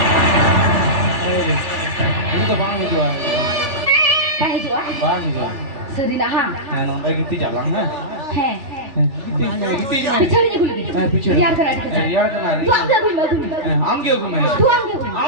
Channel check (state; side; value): late; left; 3.4 ms